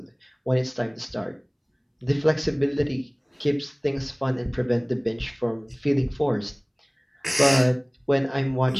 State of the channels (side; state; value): both; identical; correlation 1.00